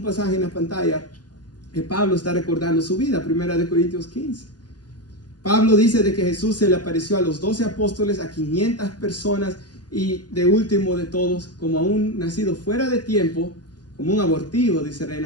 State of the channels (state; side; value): late; right; 0.70 ms